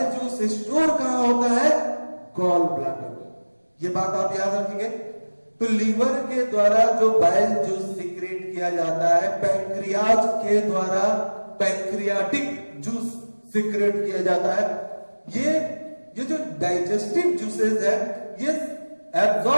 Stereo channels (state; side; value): inverted; both; correlation -1.00